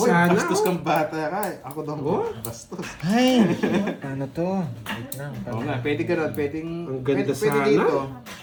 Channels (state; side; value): identical; both; correlation 1.00